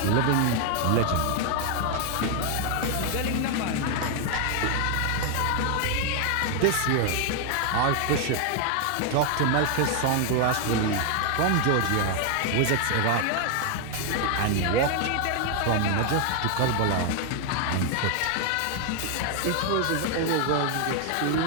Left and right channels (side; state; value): both; different; correlation 0.01